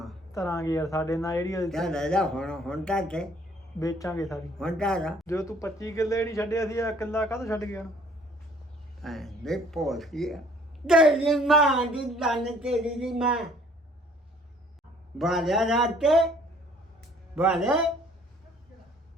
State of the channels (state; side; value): normal; both; correlation 0.58